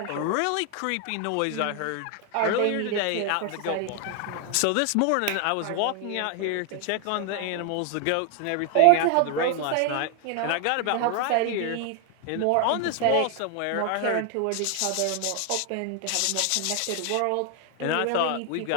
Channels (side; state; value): both; different; correlation 0.00